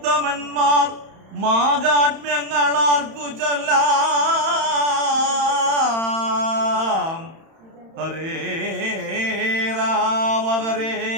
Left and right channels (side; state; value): left; late; 31 ms